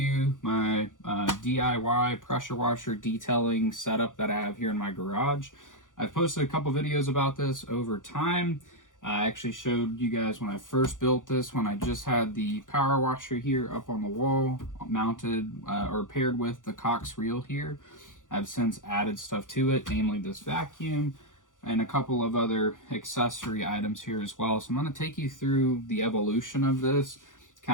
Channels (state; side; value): late; right; 0.88 ms